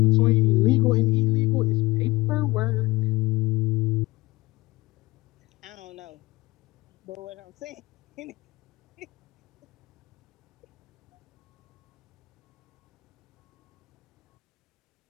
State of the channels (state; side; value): quieter; right; 20.1 dB